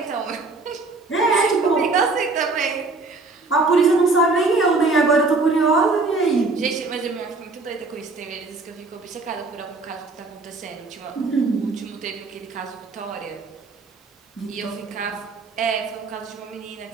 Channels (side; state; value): left; quieter; 3.6 dB